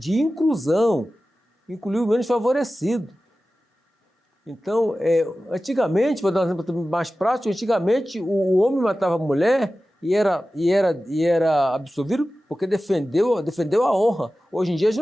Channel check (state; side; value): normal; both; correlation 0.95